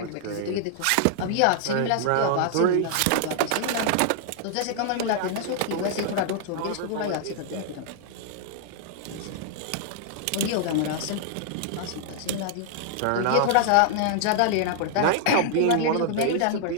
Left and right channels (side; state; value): both; different; correlation -0.01